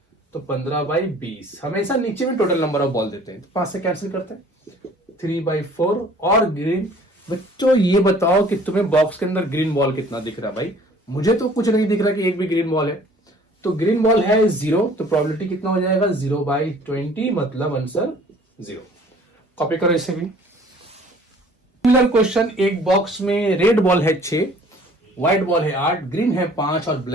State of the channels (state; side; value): normal; both; correlation 0.53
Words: तो 15/20। हमेशा नीचे में टोटल नंबर ऑफ बॉल देते हैं, तो 5 से कैंसिल करते हैं, 3/4। और ग्रीन, बच्चों ये बताओ कि तुम्हें बॉक्स के अंदर ग्रीन बॉल कितना दिख रहा है भाई, मुझे तो कुछ नहीं दिख रहा कि एक भी ग्रीन बॉल है। तो ग्रीन बॉल है 0, तो प्रोबेबिलिटी कितना हो जाएगा 0/20, मतलब आंसर 0। कॉपी करो इसे भी। सिमिलर क्वेश्चन, एक बॉक्स में रेड बॉल है 6, व्हाइट बॉल है 8, ग्रीन है 5 और